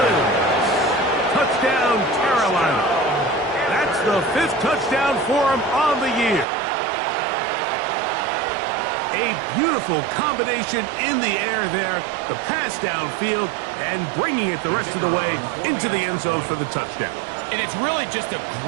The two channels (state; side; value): drops out; left; at 6.5 s